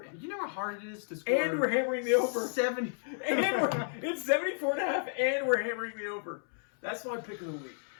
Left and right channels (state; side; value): silent; right; 56 dB below the other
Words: You know how hard it is to score. And we're hammering the over. 70. It's 74.5, and we're hammering the over. That's my pick of the week.